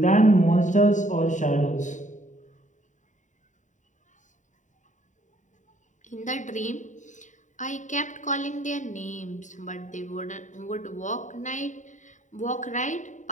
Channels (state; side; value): late; right; 0.36 ms